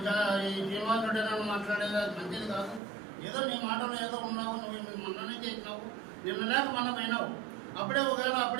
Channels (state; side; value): drops out; left; at 2.8 s